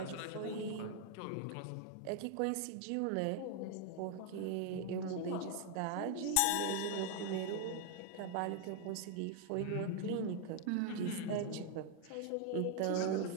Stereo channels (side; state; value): both; different; correlation 0.00